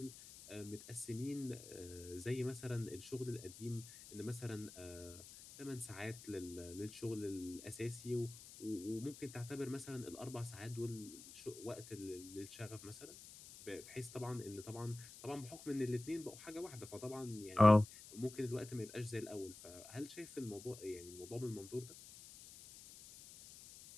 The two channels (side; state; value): left; noise; hiss, 15 dB below the sound